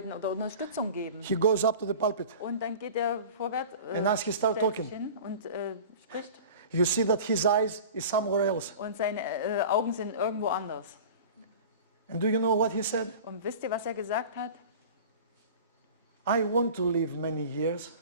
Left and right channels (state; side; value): inverted; both; correlation -0.38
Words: oder Unterstützung geben. He goes up to the pulpit. Und dann geht er vorwärts And as he start stellt sich talking. hin und spricht. You see that his eyes is somewhere else. Und seine Augen sind irgendwo anders. And do you know what he said? Und wisst ihr, was er gesagt hat? I want to live many years.